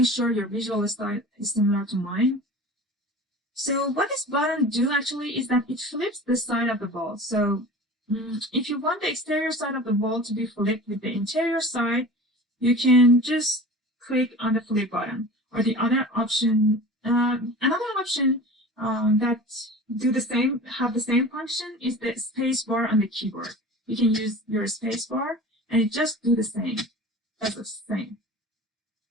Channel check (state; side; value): normal; both; correlation 0.37